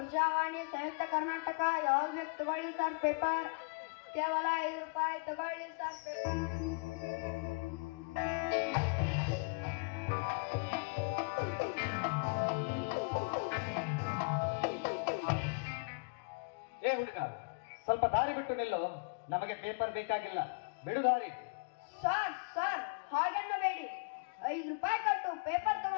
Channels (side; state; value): right; quieter; 36.0 dB